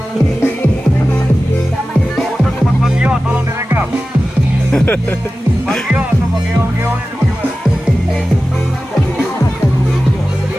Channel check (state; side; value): normal; both; correlation 0.95